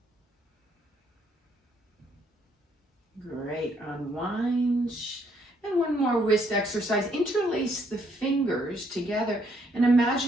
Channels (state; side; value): normal; both; correlation 0.70